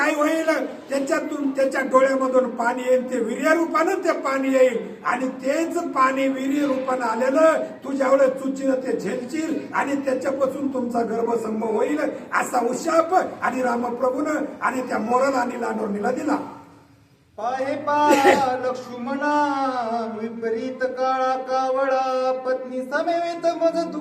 होईल, त्याच्यातून त्याच्या डोळ्यामधून पाणी येईल, ते वीर्य रूपानं ते पाणी येईल आणि तेच पाणी वीर्य रूपानं आलेलं तू ज्यावेळेस चुचीनं ते झेलशील आणि त्याच्यापासून तुमचा गर्भसंभव होईल, असा उशाप आणि रामप्रभूनं आणि त्या मोराला आणि लांडोरणीला दिला. पाहे पा लक्ष्मणा विपरीत काळा कावळा पत्नी समेत मज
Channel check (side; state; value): both; identical; correlation 1.00